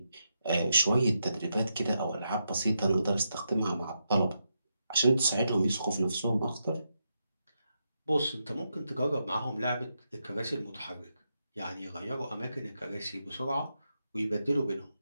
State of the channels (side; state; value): both; inverted; correlation -0.84